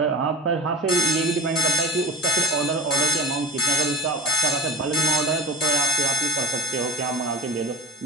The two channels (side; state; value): both; normal; correlation 0.31